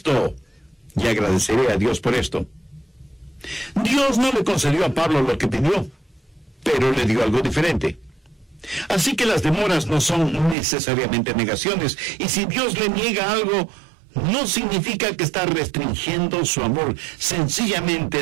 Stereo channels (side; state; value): left; drops out; at 10.6 s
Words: y agradeceré a Dios por esto. Dios no le concedió a Pablo lo que pidió, pero le dio algo diferente. Así que las demoras no son necesariamente negaciones, y si Dios le niega algo, no significa que está restringiendo su amor,